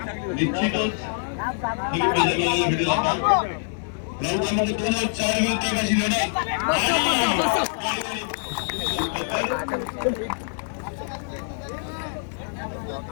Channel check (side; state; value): right; silent; digital silence